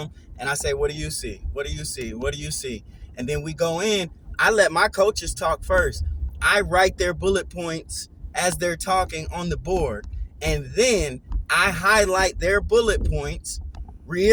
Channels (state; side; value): identical; both; correlation 1.00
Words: And I say, what do you see? What do you see? What do you see? And then we go in. I let my coaches talk first. I write their bullet points as they're talking on the board. And then I highlight their bullet points,